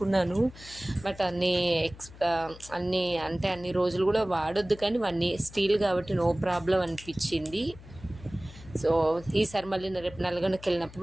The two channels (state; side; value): noise; left; hum, 18 dB below the sound